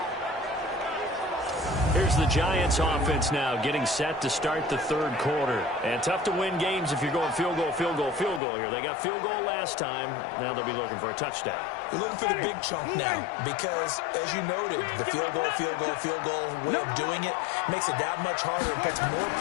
Here's the Giants offense now getting set to start the 3rd quarter. And tough to win games if you're going field goal, field goal, field goal here. They got field goal last time. Now they'll be looking for a touchdown. You're looking for the big chunk now because, as you noted, the field goal way of doing it makes it that much harder and puts more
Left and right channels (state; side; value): drops out; right; at 8.4 s